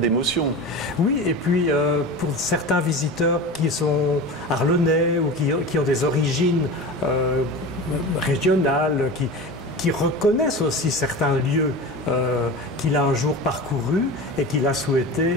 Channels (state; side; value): normal; both; correlation 0.31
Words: Oui, et puis pour certains visiteurs qui sont arlonnais, ou qui ont des origines régionales, qui reconnaissent aussi certains lieux qu'il a un jour parcourus et qu'il a